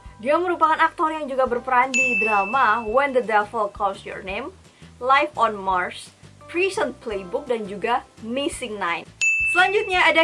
Dia merupakan aktor yang juga berperan di drama When the Devil Calls Your Name, Life on Mars, Prison Playbook, dan juga Missing Nine. Selanjutnya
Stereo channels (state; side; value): identical; both; correlation 1.00